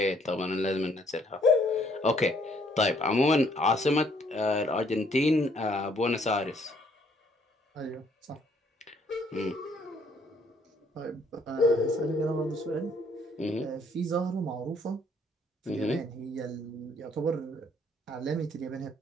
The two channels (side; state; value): both; normal; correlation 0.65